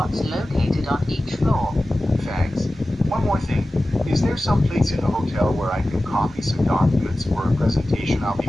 located on each floor. Thanks. One more thing. Is there some place in the hotel where I can copy some documents for a presentation I'll be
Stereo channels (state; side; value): normal; both; correlation 0.95